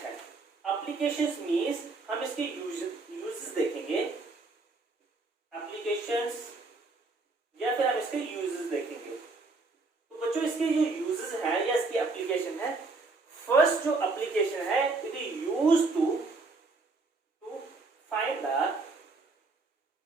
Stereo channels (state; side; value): quieter; left; 3.7 dB